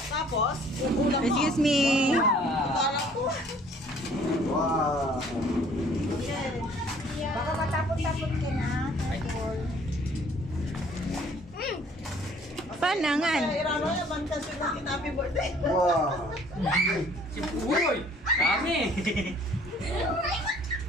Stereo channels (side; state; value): both; normal; correlation 0.57